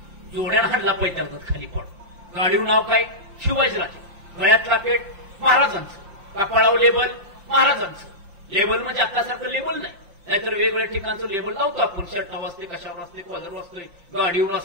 जोड्यानं हाणला पैताळतात खाली पडतो. गाडीवर नाव काय, शिवाजीराजे. गळ्यातला पेट महाराजांचं, कपाळावर लेबल महाराजांचं. लेबल म्हणजे आतासारखं लेबल नाही, नाहीतर वेगवेगळ्या ठिकाणचं लेबल लावतो आपण, शर्टावर असते, कशावर असते, कॉलरवर असतोय, गाडीवर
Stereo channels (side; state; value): left; late; 5.7 ms